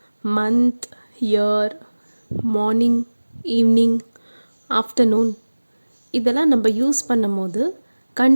month, year, morning, evening, afternoon இதெல்லாம் நம்ம யூஸ் பண்ணும் போது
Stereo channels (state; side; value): inverted; both; correlation -1.00